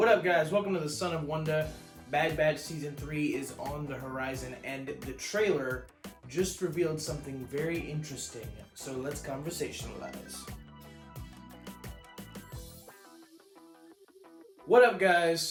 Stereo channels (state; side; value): identical; both; correlation 1.00